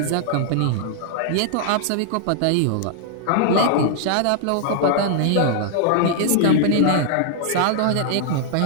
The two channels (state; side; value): different; both; correlation -0.01